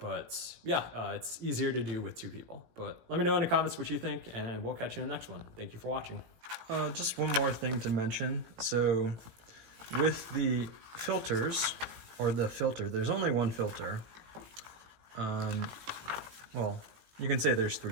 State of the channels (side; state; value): left; late; 18 ms